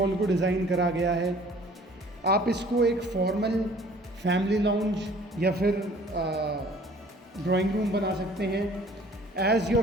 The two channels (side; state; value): both; normal; correlation 0.53